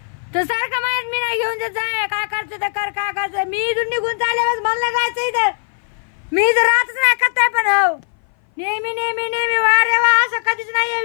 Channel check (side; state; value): right; silent; 59 dB below the other